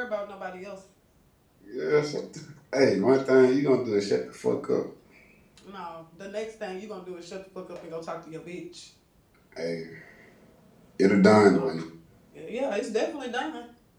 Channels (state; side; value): identical; both; correlation 1.00